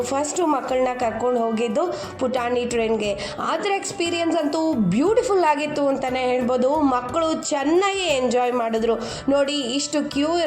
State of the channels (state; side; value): identical; both; correlation 1.00